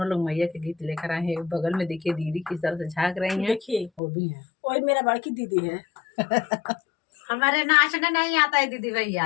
लोग मैया के गीत लेकर आए हैं। बगल में देखिए दीदी किस तरह से झांक रही हैं, देखिए वो भी है। वही मेरा बड़की दीदी है। हमारे नाचने नहीं आता है दीदी भैया,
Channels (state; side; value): drops out; right; at 4.0 s